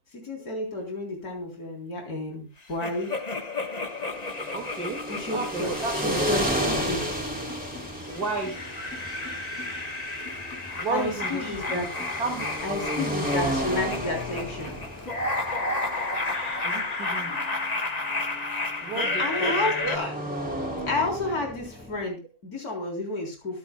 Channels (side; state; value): both; normal; correlation 0.03